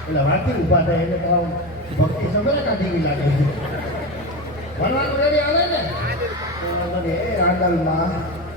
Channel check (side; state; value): both; normal; correlation 0.20